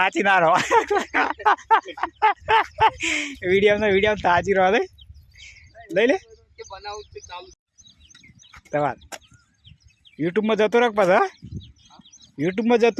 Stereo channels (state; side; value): identical; both; correlation 1.00